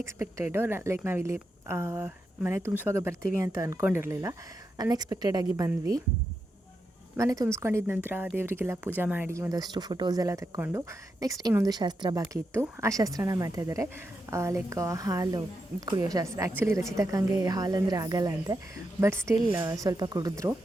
ಲೈಕ್ ನಾವಿಲ್ಲಿ ಮನೆ ತುಂಬಿಸುವಾಗ ಬರ್ತೀವಿ ಅಂತ ಅಂದ್ಕೊಂಡಿರಲಿಲ್ಲ. ಅನ್ಎಕ್ಸ್ಪೆಕ್ಟೆಡಾಗಿ ಬಂದ್ವಿ. ಮನೆ ತುಂಬಿಸ್ಕೊಂಡಿದ್ದ ನಂತರ ದೇವರಿಗೆಲ್ಲ ಪೂಜೆ ಮಾಡಿ ಒಂದಷ್ಟು ಫೋಟೋಸ್ ಎಲ್ಲ ತಕ್ಕೊಂಡು ನೆಕ್ಸ್ಟ್ ಇನ್ನೊಂದು ಶಾಸ್ತ್ರ ಬಾಕಿ ಇತ್ತು. ಆ ಶಾಸ್ತ್ರನ ಮಾಡ್ತಾಯಿದ್ದಾರೆ, ಲೈಕ್ ಹಾಲು ಕುಡಿಯೋ ಶಾಸ್ತ್ರ. ಆ್ಯಕ್ಚುಲಿ ರಚಿತಕ್ಕಂಗೆ ಹಾಲು ಅಂದರೆ ಆಗಲ್ಲ ಅಂತೆ, ಬಟ್ ಸ್ಟಿಲ್ ಸ್ವಲ್ಪ ಕುಡಿದ್ರು.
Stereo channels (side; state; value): both; normal; correlation 0.85